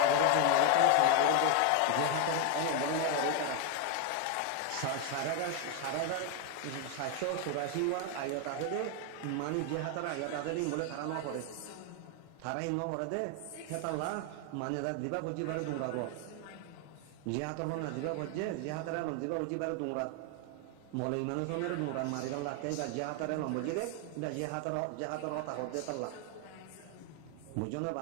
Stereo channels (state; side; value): different; both; correlation 0.01